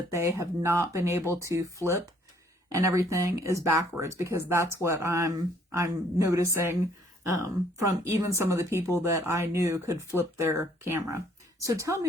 they have not been able to flip and everything is backwards, because that's what I'm noticing from even some of the people that I knew could flip their camera. So tell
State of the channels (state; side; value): normal; both; correlation 0.63